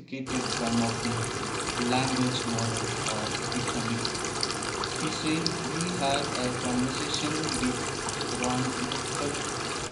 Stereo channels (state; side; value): identical; both; correlation 1.00